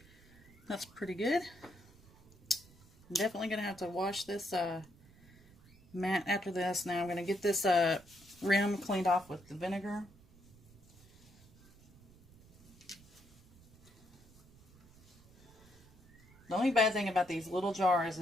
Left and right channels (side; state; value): right; noise; rumble, 25 dB below the sound